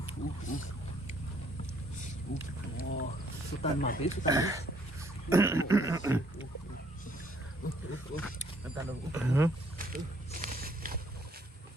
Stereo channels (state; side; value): normal; both; correlation 0.65